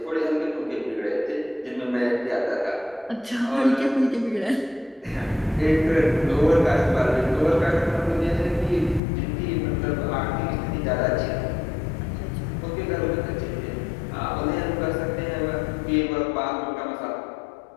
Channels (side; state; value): right; drops out; at 9.0 s